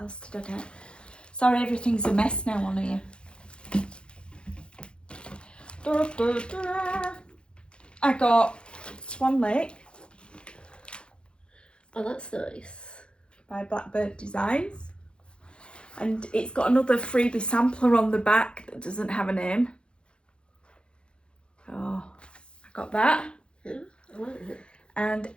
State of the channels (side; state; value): right; late; 0.055 ms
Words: did I get? Sorry, everything's a mess now on here. I got Swan Lake Oh, that's nice. by Blackbird Designs. And it's got another freebie sampler on the back that doesn't have a name. Oh, I got that. Yeah, I like it. And